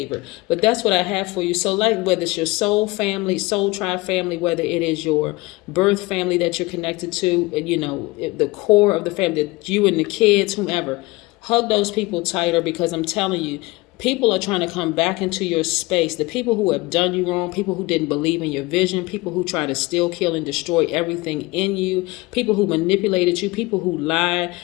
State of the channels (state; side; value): quieter; right; 22.2 dB